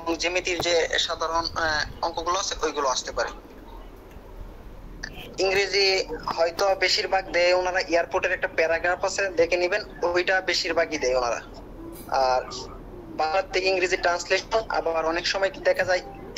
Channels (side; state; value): both; identical; correlation 1.00